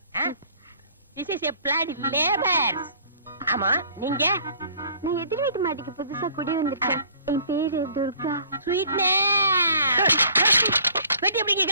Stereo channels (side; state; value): both; inverted; correlation -0.55